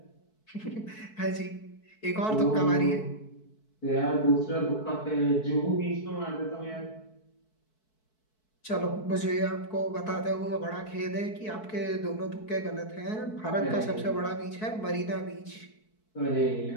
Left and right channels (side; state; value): right; late; 4.6 ms